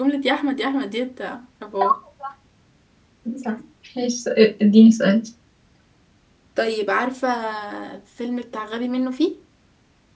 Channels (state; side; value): identical; both; correlation 1.00